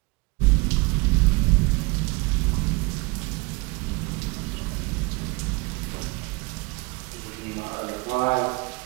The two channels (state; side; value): quieter; left; 26.1 dB